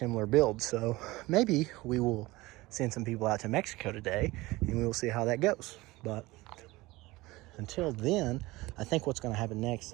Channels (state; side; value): quieter; left; 20.4 dB